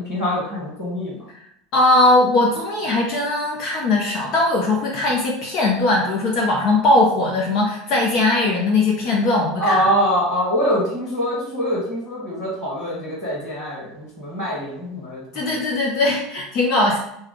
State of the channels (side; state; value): both; normal; correlation 0.31